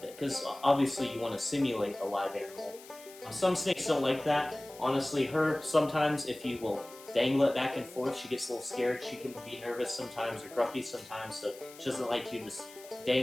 because obviously you want to simulate a live animal. Some snakes don't like that. Honestly, her, sometimes if you will dangle it back and forth, she gets a little scared. She can be nervous sometimes or grumpy sometimes, so she doesn't like you just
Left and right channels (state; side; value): noise; left; hiss, 19 dB below the sound